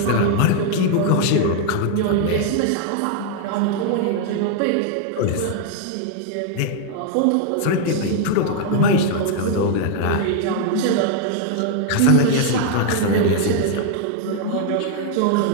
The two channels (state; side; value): different; both; correlation 0.00